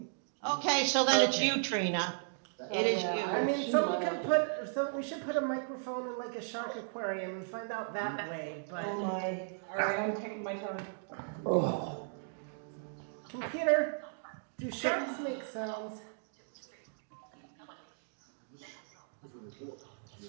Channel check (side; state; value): left; silent; digital silence